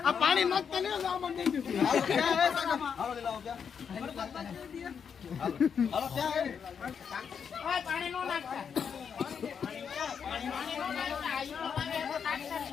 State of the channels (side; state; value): right; quieter; 7.0 dB